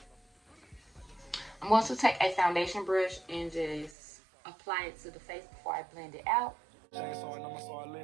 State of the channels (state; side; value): drops out; left; at 4.0 s